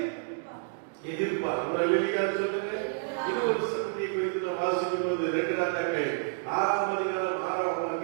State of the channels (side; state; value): left; silent; digital silence